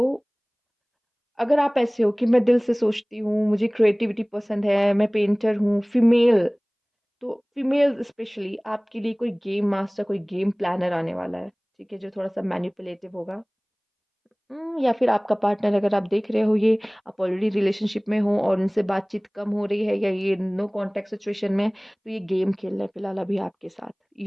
अगर आप ऐसे हो कि मैं दिल से सोचती हूँ, मुझे क्रिएटिविटी पसंद है, मैं पेंटर हूँ, फीमेल, तो फीमेल स्पेशली आपके लिए कोई गेम मास्टर, कोई गेम प्लानर आने वाला है, ठीक है? जो थोड़ा-सा मैनिपुलेटिव होगा। या फिर आपका पार्टनर, अगर आप देख रहे हो ये, आप ऑलरेडी रिलेशनशिप में हो और उनसे बातचीत कम हो रही है, या ये नो कॉन्टैक्ट सिचुएशन में, तो ये गेम खेल रहे हैं फिलहाल अभी आपके साथ।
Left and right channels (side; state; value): both; identical; correlation 1.00